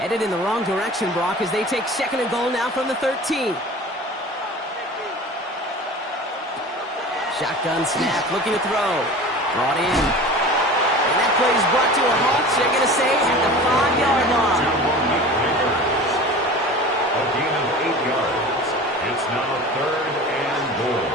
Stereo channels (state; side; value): normal; both; correlation 0.37